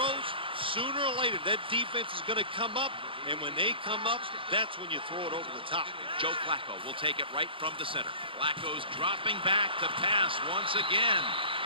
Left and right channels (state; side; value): late; left; 0.25 ms